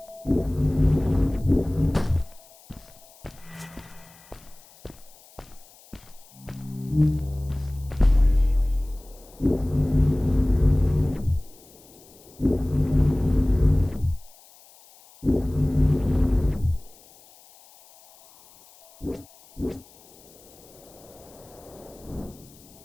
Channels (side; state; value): left; noise; hiss, 25 dB below the sound